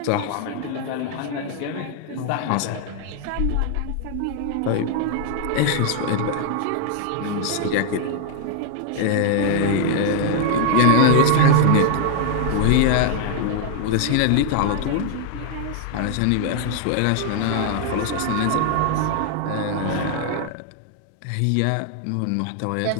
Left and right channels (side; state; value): both; different; correlation 0.00